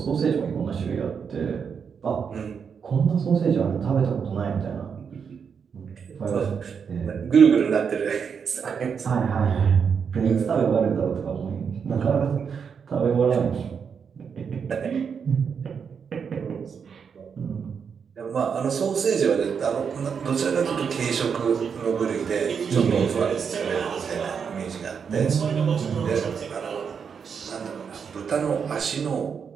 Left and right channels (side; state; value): left; quieter; 6.6 dB